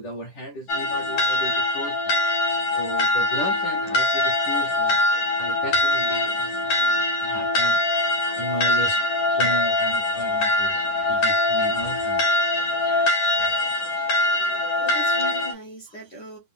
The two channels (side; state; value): right; late; 10 ms